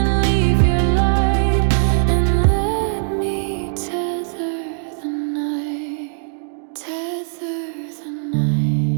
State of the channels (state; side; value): silent; left; digital silence